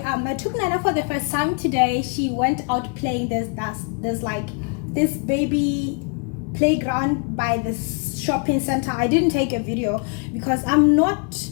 I took Nana for the first time today. She went out playing. There's like this baby playground by this shopping center. I didn't take a video because I'm not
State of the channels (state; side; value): quieter; right; 37.0 dB